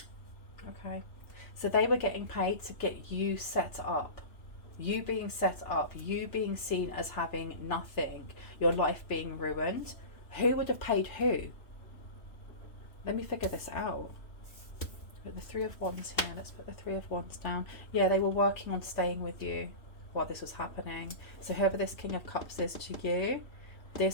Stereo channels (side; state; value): right; late; 2.9 ms